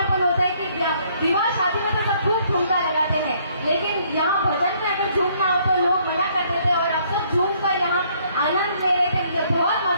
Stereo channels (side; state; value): both; inverted; correlation -0.65